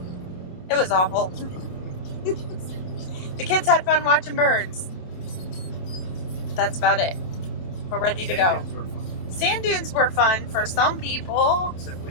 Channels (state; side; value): late; right; 27 ms